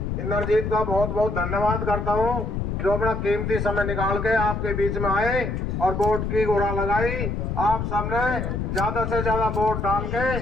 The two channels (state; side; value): noise; left; rumble, 2 dB below the sound